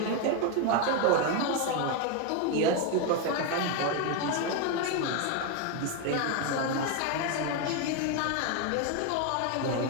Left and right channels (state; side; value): different; both; correlation 0.02